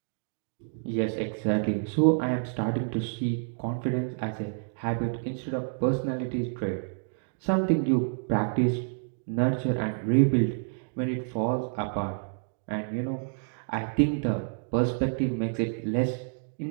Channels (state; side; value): silent; left; digital silence